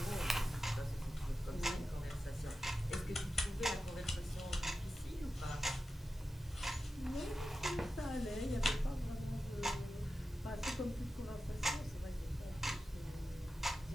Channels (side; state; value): both; normal; correlation 0.92